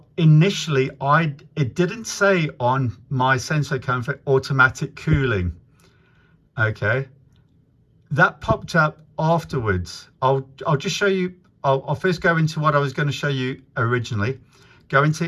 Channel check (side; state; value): both; identical; correlation 1.00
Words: initially, it didn't say on my SensoComfort automatic cooling. Okay, that popped up afterwards. I'll just show you. I'll first go into what I was going to show you originally. Go